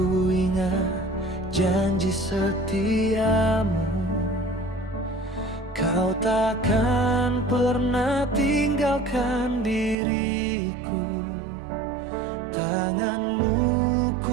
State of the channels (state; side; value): drops out; left; at 10.0 s